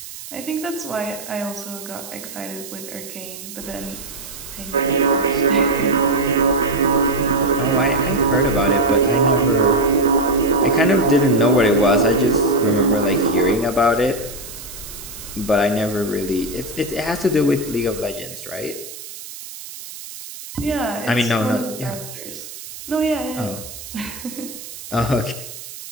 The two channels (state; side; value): noise; right; hiss, 13 dB below the sound